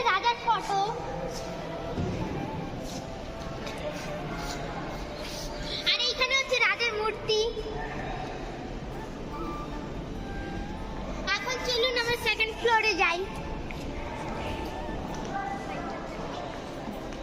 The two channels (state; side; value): identical; both; correlation 1.00